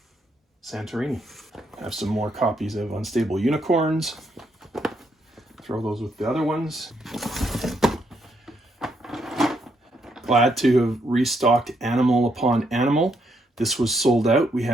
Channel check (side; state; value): both; normal; correlation 0.75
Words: Santorini. I have some more copies of Unstable Unicorns. Throw those with the other ones. Glad to have restocked Animal Upon Animal. This was sold out. We